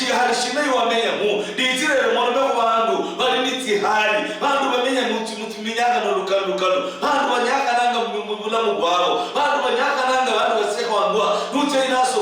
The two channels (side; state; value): both; identical; correlation 1.00